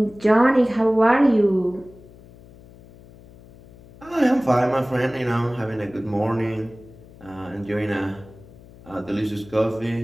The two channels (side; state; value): left; noise; hum, 22 dB below the sound